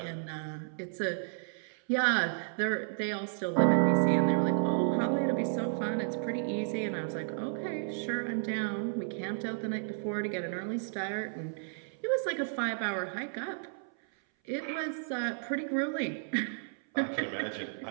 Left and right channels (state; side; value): silent; left; 56 dB below the other